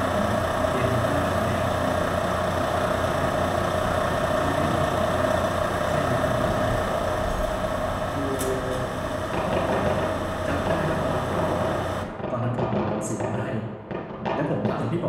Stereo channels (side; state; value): both; identical; correlation 1.00